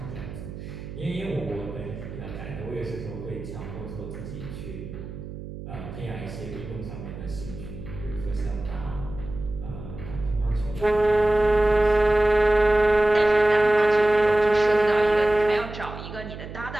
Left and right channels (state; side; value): noise; right; hum, 11 dB below the sound